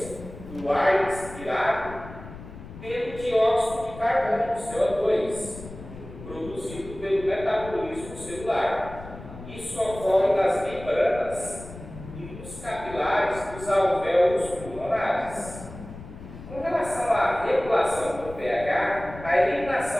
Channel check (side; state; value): left; noise; rumble, 14 dB below the sound